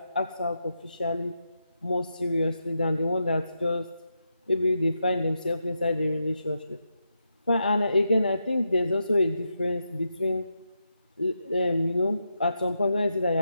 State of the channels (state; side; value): inverted; both; correlation -0.86